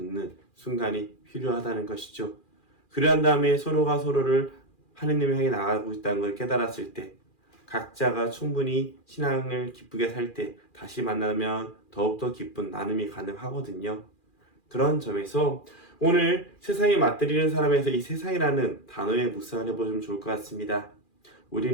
순간이 필요하다는 것이죠. 그러한 다음에 서로가 서로를 하느님을 향해 나아가고 있다는 걸 깨달았을 때, 각자가 충분히 신앙을 기쁘게 살 때 다시 만나면 더욱더 기쁜 나눔이 가능하거든요. 그런 점에서 오늘 세상에 맞들이는 사람에서 이 세상이라는 단어에 묵상을 해보시면 좋을 것 같습니다.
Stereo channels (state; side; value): late; right; 2.4 ms